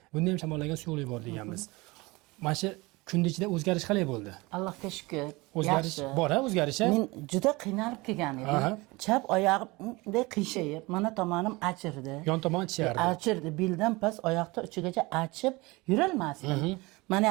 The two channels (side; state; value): left; quieter; 23.3 dB